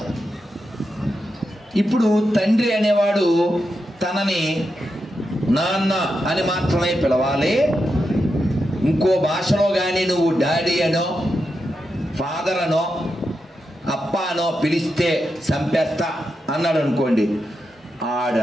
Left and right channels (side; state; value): both; normal; correlation 0.87